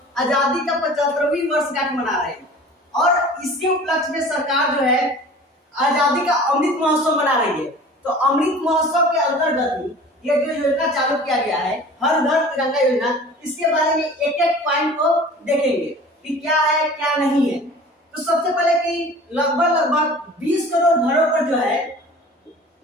आजादी का 75वीं वर्षगांठ मना रहे हैं, और इसके उपलक्ष्य में सरकार जो है आजादी का अमृत महोत्सव मना रही है। तो अमृत महोत्सव के अंतर्गत ये जो योजना चालू किया गया है हर घर तिरंगा योजना, इसके बारे में एक एक पॉइंट को देखेंगे कि क्या है क्या नहीं है। तो सबसे पहले कि लगभग 20 करोड़ घरों पर जो है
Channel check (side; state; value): both; normal; correlation 0.43